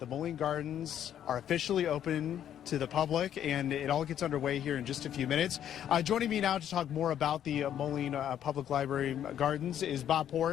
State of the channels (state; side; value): quieter; right; 10.2 dB